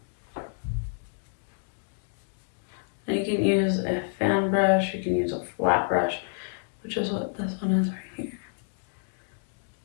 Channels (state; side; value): silent; right; digital silence